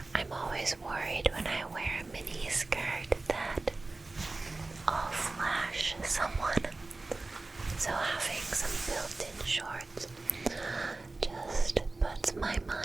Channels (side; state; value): left; quieter; 3.3 dB